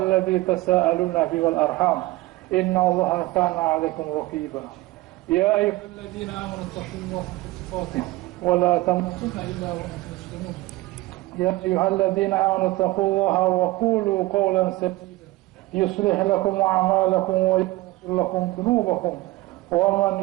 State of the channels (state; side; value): quieter; left; 19.3 dB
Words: تساءلون به والأرحام إن الله كان عليكم رقيبا. يا أيها الذين آمنوا اتقوا الله حق تقاته ولا تموتن إلا وأنتم مسلمون. يا أيها الذين آمنوا اتقوا الله وقولوا قولا سديدا يصلح لكم أعمالكم ويغفر لكم ذنوبكم ومن